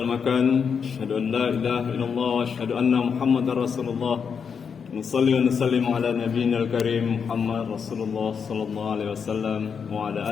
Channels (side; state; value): right; quieter; 6.5 dB